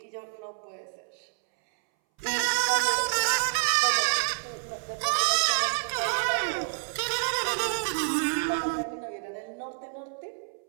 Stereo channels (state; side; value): silent; left; 59 dB below the other